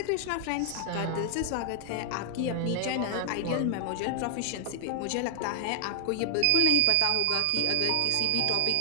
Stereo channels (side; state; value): both; different; correlation 0.00